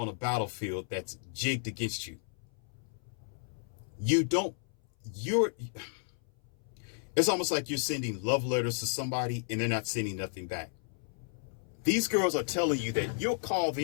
a battlefield that's jigged against you? It's almost like you're sending love letters to somebody and they're not sending nothing back. These girls are telling you that you'll call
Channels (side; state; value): right; silent; 56 dB below the other